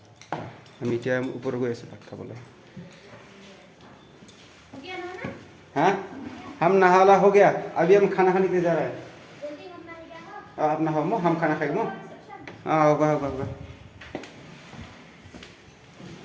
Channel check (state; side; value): identical; both; correlation 1.00